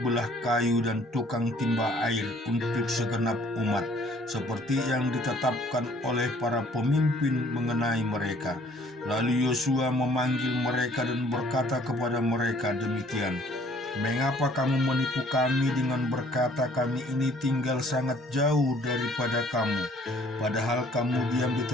kayu dan tukang timba air untuk segenap umat, seperti yang ditetapkan oleh para pemimpin mengenai mereka. Lalu Yosua memanggil mereka dan berkata kepada mereka demikian, mengapa kamu menipu kami dengan berkata kami ini tinggal sangat jauh daripada kamu, padahal kamu diam di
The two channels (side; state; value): both; normal; correlation 0.58